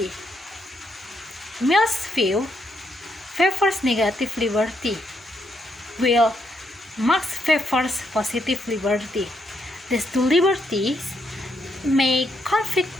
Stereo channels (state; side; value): normal; both; correlation 0.76